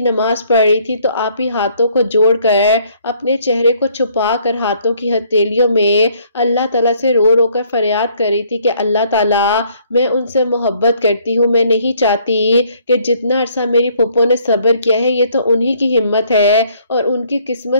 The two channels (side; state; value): both; inverted; correlation -0.64